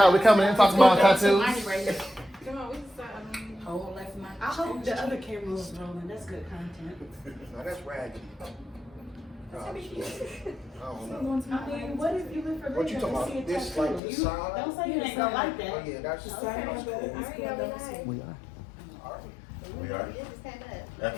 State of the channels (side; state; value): right; drops out; at 14.0 s